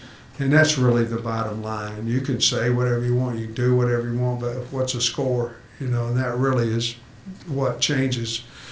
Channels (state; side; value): identical; both; correlation 1.00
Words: And that's really the bottom line. You can say whatever you want, you can do whatever you want, but what's a score? You know, and that really is what changes